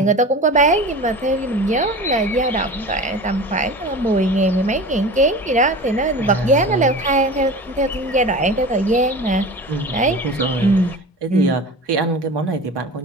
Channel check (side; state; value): both; normal; correlation 0.34